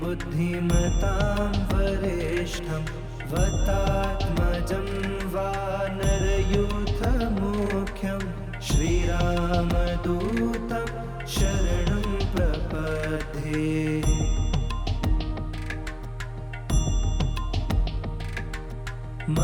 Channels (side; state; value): both; identical; correlation 1.00